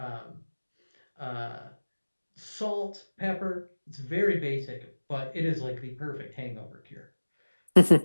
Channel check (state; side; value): inverted; both; correlation -1.00